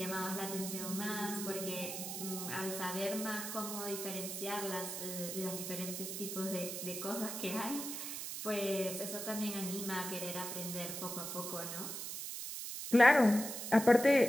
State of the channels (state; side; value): noise; right; hiss, 6 dB below the sound